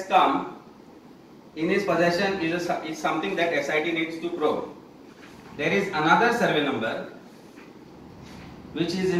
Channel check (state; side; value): identical; both; correlation 1.00